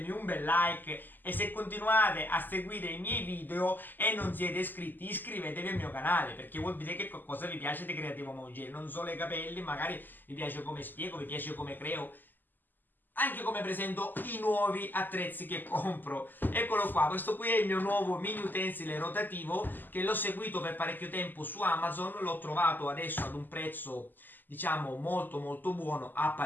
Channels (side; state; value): right; late; 0.089 ms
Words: un bel like e se continuate a seguire i miei video e non siete iscritti, iscrivetevi al mio canale perché vuol dire che qualcosa vi piace di Creativo Mongere, non solo i capelli, magari vi piace come spiego, vi piace come creo, anche come presento i nuovi attrezzi che compro. Eccolo qua, questo qui è il mio nuovo mini utensile rotativo che l'ho seguito per parecchio tempo su Amazon, l'ho trovato adesso ad un prezzo diciamo molto molto buono a